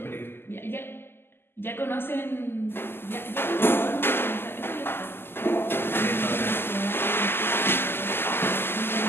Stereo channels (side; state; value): right; late; 0.11 ms